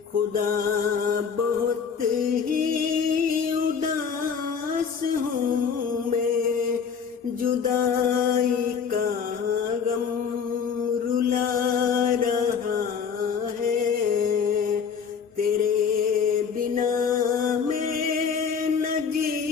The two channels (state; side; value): quieter; right; 6.6 dB